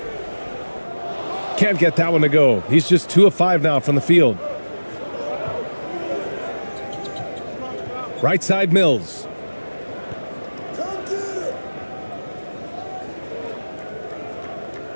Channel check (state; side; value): inverted; both; correlation -1.00